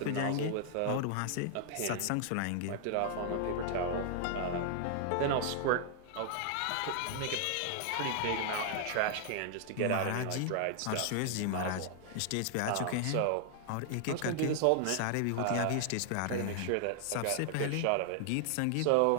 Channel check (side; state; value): both; different; correlation -0.01